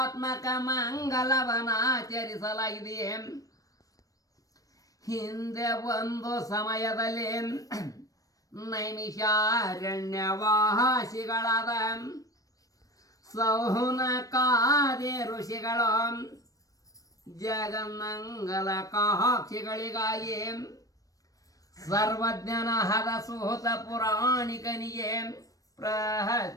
ಮಂಗಲವನಾಚರಿಸಲಾಗಿದೆ. ಹಿಂದೆ ಒಂದು ಸಮಯದಲ್ಲಿ ನೈಮಿಷಾರಣ್ಯವಾಸಿಗಳಾದ ಸೌನಕಾದಿ ಋಷಿಗಳು ಜಗನ್ಮಂಗಲ ಕಾಕ್ಷಿಗಳಿಗಾಗಿ ಸರ್ವಜ್ಞನಾದ ಸುಹೃತ ಪುರಾಣಿಕನಿಗೆ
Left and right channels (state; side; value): late; right; 0.17 ms